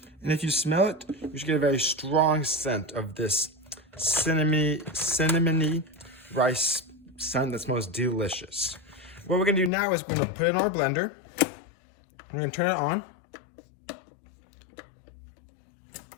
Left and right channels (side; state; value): right; drops out; at 9.7 s